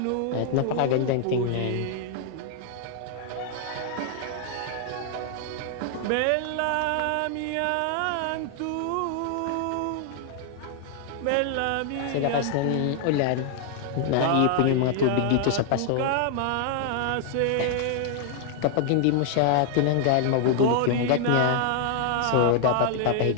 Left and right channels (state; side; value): different; both; correlation 0.00